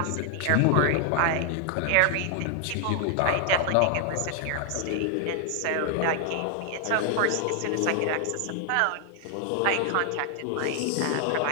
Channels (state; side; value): different; both; correlation 0.00